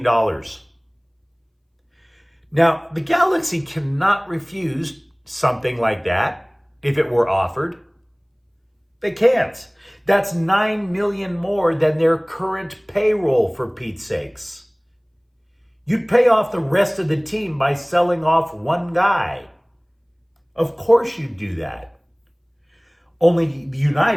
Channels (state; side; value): identical; both; correlation 1.00